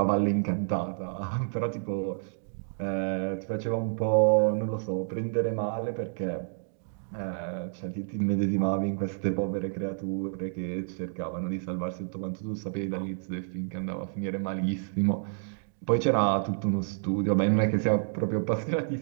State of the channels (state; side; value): silent; left; digital silence